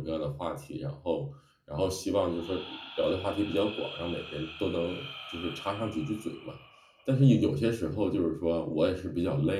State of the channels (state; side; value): identical; both; correlation 1.00